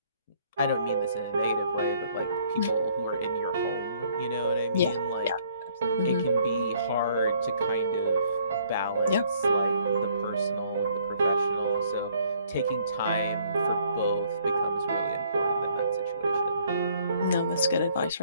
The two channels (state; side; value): inverted; both; correlation -0.63